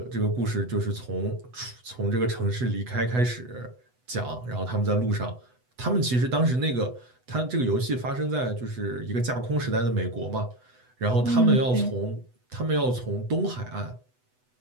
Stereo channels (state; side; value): late; left; 8.0 ms